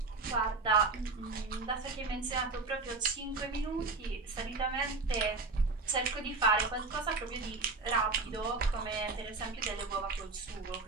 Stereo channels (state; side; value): quieter; left; 3.8 dB